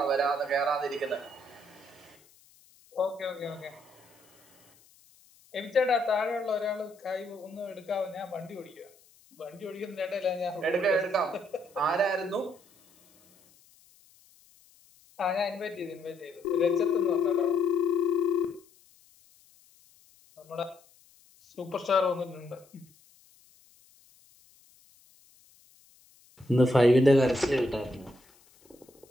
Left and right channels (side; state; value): left; noise; hiss, 29 dB below the sound